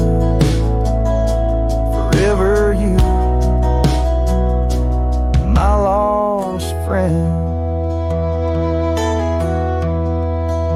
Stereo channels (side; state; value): both; identical; correlation 1.00